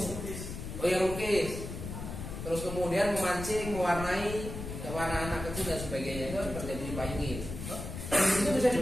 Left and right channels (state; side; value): noise; left; rumble, 8 dB below the sound